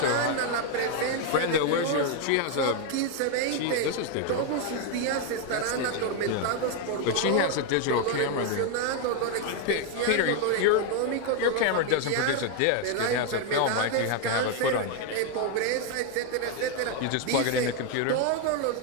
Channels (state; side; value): different; both; correlation 0.01